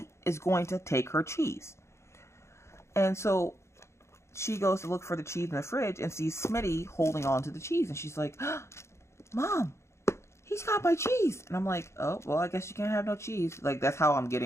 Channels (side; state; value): right; late; 0.13 ms